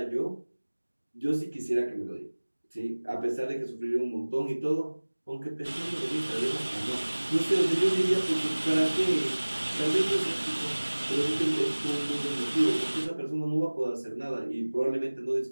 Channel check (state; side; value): inverted; both; correlation -1.00